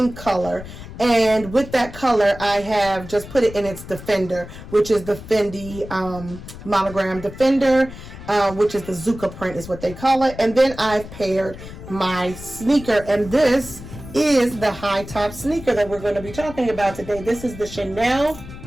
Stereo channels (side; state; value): left; noise; rumble, 14 dB below the sound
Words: color. And with that color, I have just put it in its Defender, which is the Fendi monogram Defender, which is the Zuka print is what they call it. And then I've paired my sneaker, and this is the high top sneaker that we're going to be talking about today. This is the Chanel